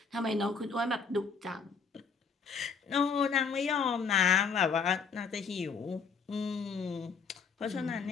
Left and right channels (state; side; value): quieter; right; 5.6 dB